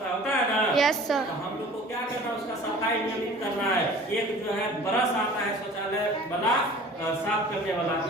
है ना। यस सर, तो हम लोग को क्या करना है, उसका सफाई नियमित करना है। एक जो है ब्रश आता है शौचालय वाला साफ करने वाला,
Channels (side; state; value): both; normal; correlation 0.45